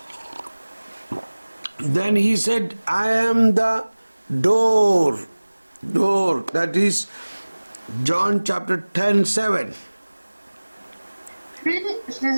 » Then he said, I am the door. Door. That is John chapter 10:7. Puis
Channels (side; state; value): both; inverted; correlation -1.00